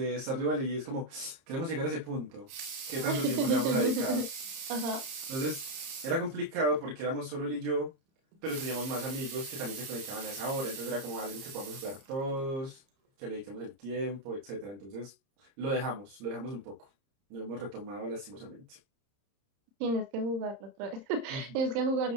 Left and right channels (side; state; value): left; late; 30 ms